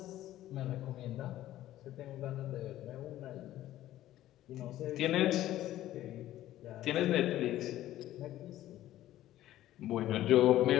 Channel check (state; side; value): quieter; right; 13.9 dB